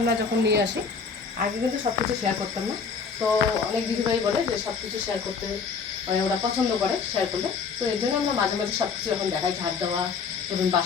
যখন নিয়ে আসি, আগে কিন্তু সব কিছু শেয়ার করতাম না। তো অনেক দিদিভাই বলে যে সব কিছু শেয়ার করতে, মানে ওরা পছন্দ করে শেয়ার করলে, তো এর জন্য আমরা মাঝে মাঝে সব কিছু এখন দেখাই, ঝাড় দেওয়া, ধরুন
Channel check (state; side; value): quieter; right; 5.5 dB